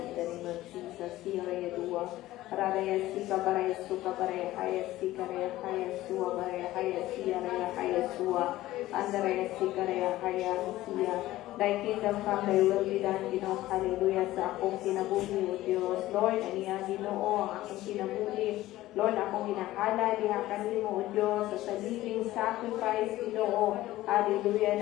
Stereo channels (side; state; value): right; quieter; 16.0 dB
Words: the name of Jesus, Siraya Dua, Raraya Sika Baraya Suka Baraya Haya Sika Raya Haya Sua Baraya Haya Sia Raya Haya Sua, Andaraya Sika Raya Haya Sia. Thy kingdom come, thy will be done, Ginoo, hallelujah, sa akong kinabuhi, O Diyos. Lord, aniya, Ginoo, ang akong kinabuhi, Lord, akong ginahala, diha kanimo, O Diyos, sa sariling sacrifice, Ginoo. Hallelujah,